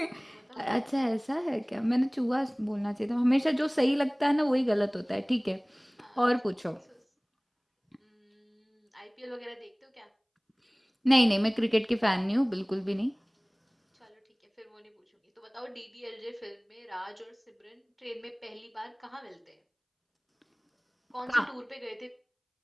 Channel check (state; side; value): identical; both; correlation 1.00